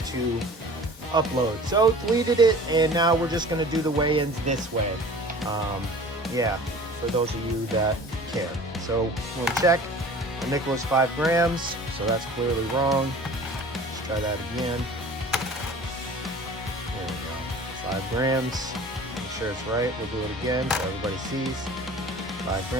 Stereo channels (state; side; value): normal; both; correlation 0.43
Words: to upload. So deleted it, and now we're just going to do the weigh-ins this way. Yeah, for those of you that care. So we'll check. My nickel is 5 grams, so that's clearly wrong. Let's try that again. There we go. 5 grams. Make sure it's right. We'll do it again so everybody sees. 5